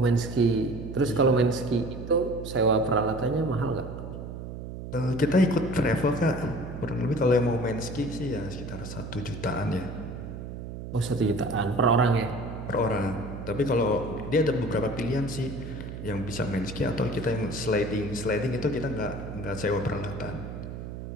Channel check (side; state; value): right; noise; hum, 9 dB below the sound